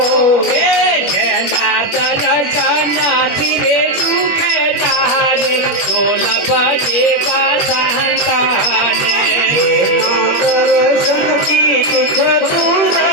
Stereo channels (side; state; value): right; late; 21 ms